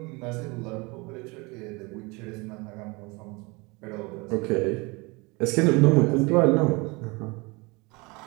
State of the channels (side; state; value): left; quieter; 26.5 dB